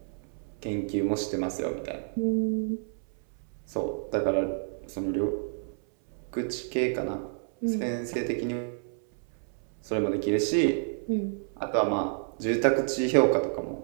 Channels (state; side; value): silent; left; 58 dB below the other